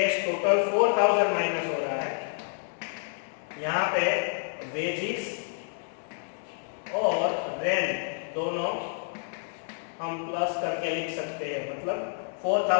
टोटल 4,000 माइनस हो रहा है. यहाँ पे वेजिस और रेंट दोनों हम प्लस करके लिख सकते हैं. मतलब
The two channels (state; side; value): silent; right; digital silence